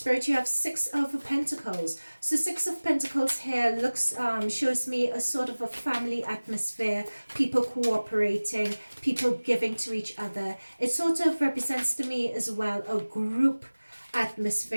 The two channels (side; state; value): both; inverted; correlation -1.00